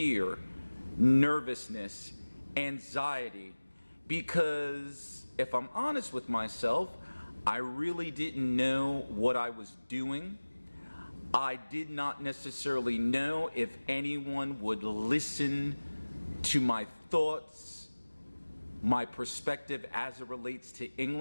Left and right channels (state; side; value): inverted; both; correlation -1.00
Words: nervousness, anxiety, because if I'm honest with myself, I really didn't know what I was doing. I did not necessarily know if anyone would listen to my thoughts, my perspective as it relates to